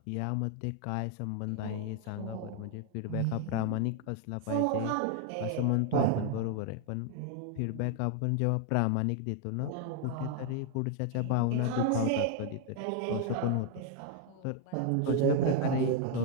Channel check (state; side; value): different; both; correlation 0.00